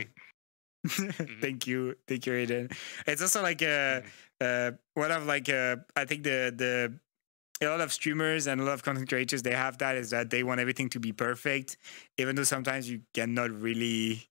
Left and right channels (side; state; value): right; silent; digital silence